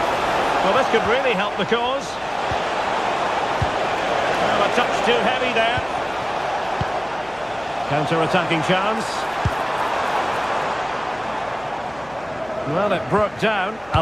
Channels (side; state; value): left; noise; hum, 24 dB below the sound